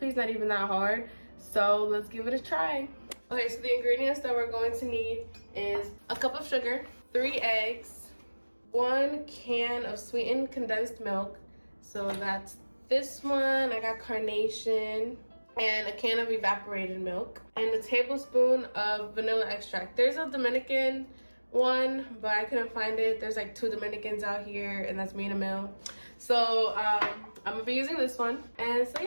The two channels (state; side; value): inverted; both; correlation -1.00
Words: is not even that hard, so let's give it a try. Okay, so the ingredients that we're going to need is a cup of sugar, 3 eggs, 1 can of sweetened condensed milk. So that's this one. I got carnation, and a can of evaporated milk, and a tablespoon of vanilla extract. There's a Dominican one, but I couldn't find it. There's like 2 Dominicans out here, and that's me in a mill. So I'm gonna be using this one. And so